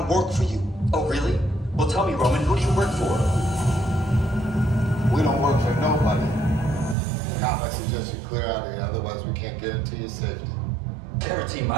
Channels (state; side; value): drops out; left; at 7.0 s